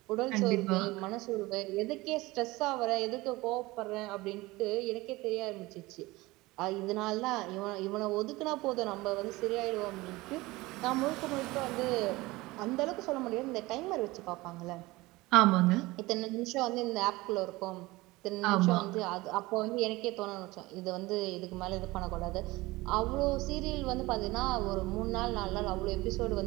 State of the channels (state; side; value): quieter; left; 20.7 dB